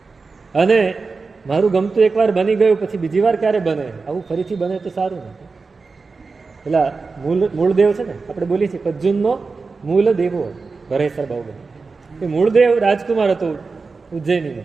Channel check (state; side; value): quieter; left; 4.3 dB